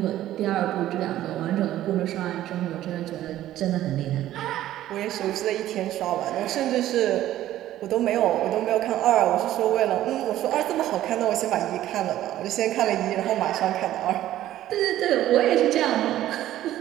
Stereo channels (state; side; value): quieter; left; 13.5 dB